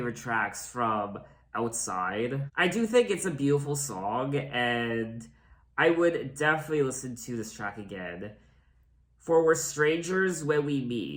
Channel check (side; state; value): both; identical; correlation 1.00